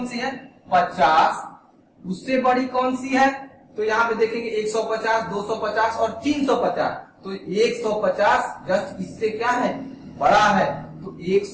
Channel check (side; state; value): both; identical; correlation 1.00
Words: सी है, 50, उससे बड़ी कौन सी है? तो यहाँ पे देखेंगे 150, 250 और 350। तो 150 जस्ट इससे क्या है? बड़ा है, तो